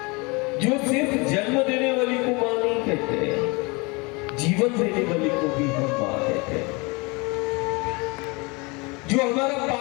जो सिर्फ जन्म देने वाली को मां नहीं कहते, जीवन देने वाली को भी हम मां कहते हैं। जो हमारा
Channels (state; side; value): quieter; right; 27.7 dB